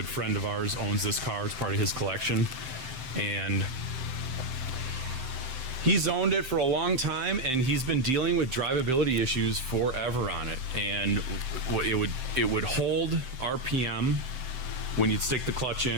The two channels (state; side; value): late; left; 7.7 ms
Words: friend of ours, owns this car. It's part of his collection, and he's owned it for a long time, and he's been dealing with drivability issues forever on it. And it would hold RPM when you'd stick the clutch